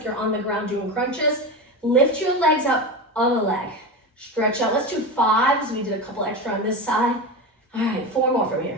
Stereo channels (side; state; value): both; normal; correlation 0.22